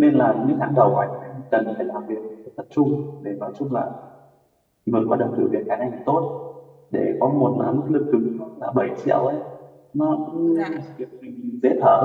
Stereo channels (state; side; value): identical; both; correlation 1.00